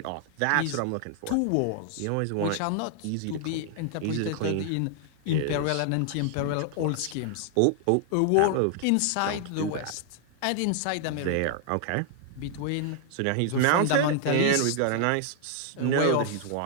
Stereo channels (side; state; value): both; different; correlation 0.00